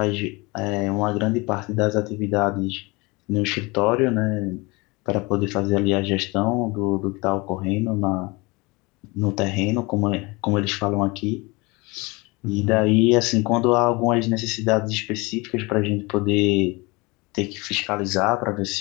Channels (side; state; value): right; quieter; 25.3 dB